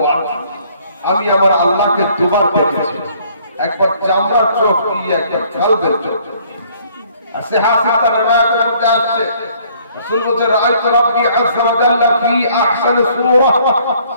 আমি আমার আল্লাহকে দুবার দেখেছি, একবার চামড়ার চোখ দিয়ে, একবার কালবের চোখ। আর সিহাহাত রিওয়ায়াতের মধ্যে আসছে রাসূল বলেন রাআইতু রাব্বি আযজা ওয়া জাল্লা ফি আহসানি সূরা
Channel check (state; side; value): inverted; both; correlation -0.61